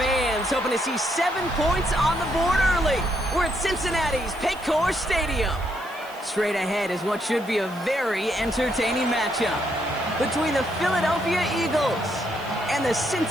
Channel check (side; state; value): right; noise; hiss, 22 dB below the sound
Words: hoping to see 7 points on the board early. We're at Cincinnati's Paycor Stadium. Straight ahead is what should be a very entertaining matchup between the Philadelphia Eagles and the